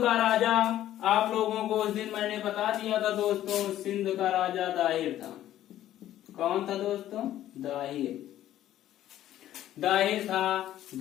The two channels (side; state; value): right; quieter; 12.7 dB